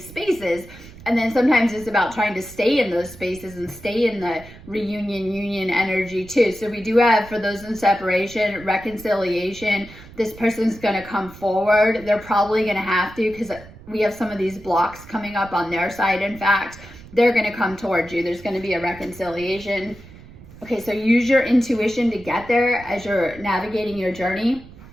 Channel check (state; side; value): noise; right; rumble, 18 dB below the sound